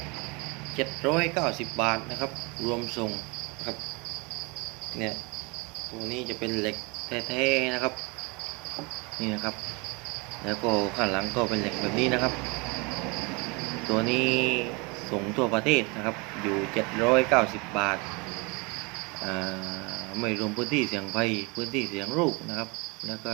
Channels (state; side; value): quieter; left; 28.6 dB